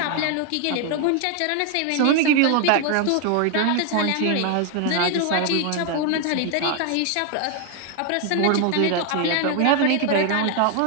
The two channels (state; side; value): different; both; correlation 0.01